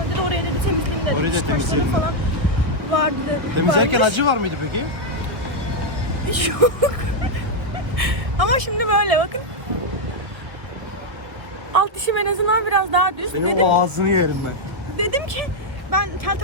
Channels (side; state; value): left; late; 1.4 ms